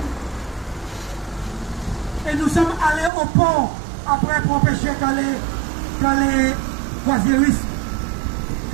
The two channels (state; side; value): drops out; left; at 3.1 s